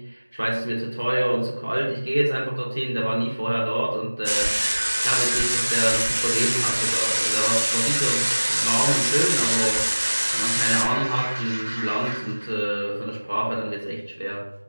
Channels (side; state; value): both; inverted; correlation -1.00